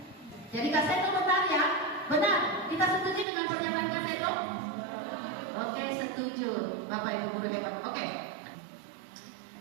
Jadi Kak Seto bertanya, benar? Kita setuju dengan pernyataan Kak Seto? Oke, setuju. Bapak Ibu guru hebat. Oke.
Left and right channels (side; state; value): left; drops out; at 3.2 s